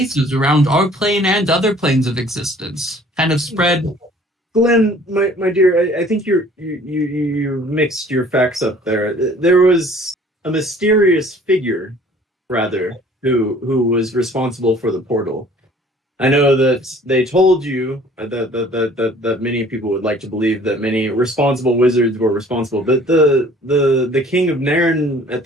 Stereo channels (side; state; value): both; normal; correlation 0.53